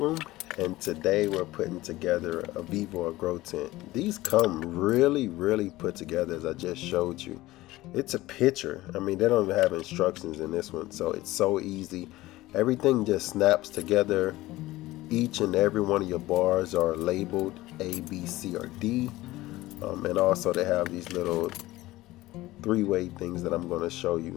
and today we're putting together a Vevor grow tent. These come really put together as I just showed you. It's a picture. I mean, they don't even have instructions in this one, so it's so easy. Everything just snaps together. Each and every one of your bars are labeled A, B, C, or D. And also they have these little three-way things that I'm going to show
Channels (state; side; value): quieter; right; 17.8 dB